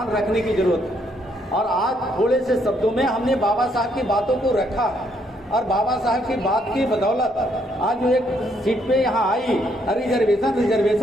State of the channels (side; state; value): both; normal; correlation 0.71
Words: रखने की जरूरत है। और आज थोड़े से शब्दों में हमने बाबा साहब की बातों को रखा और बाबा साहब की बात की बदौलत आज जो एक सीट पे यहाँ आई,